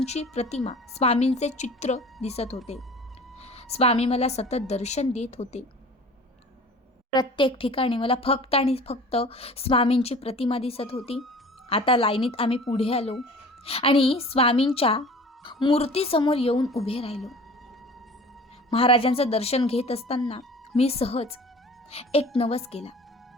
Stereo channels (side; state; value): both; normal; correlation 0.43